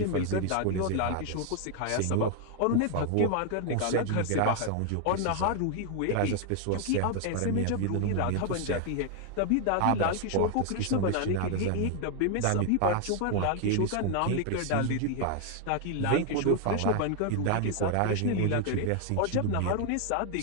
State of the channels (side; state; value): both; different; correlation 0.00